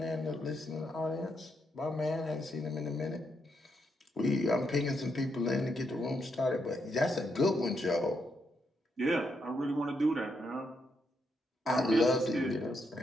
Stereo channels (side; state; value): both; normal; correlation 0.79